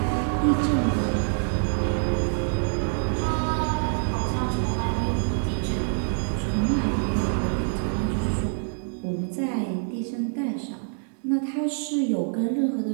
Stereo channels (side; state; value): left; silent; digital silence